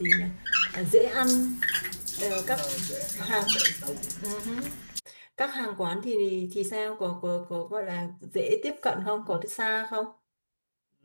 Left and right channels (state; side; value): inverted; both; correlation -1.00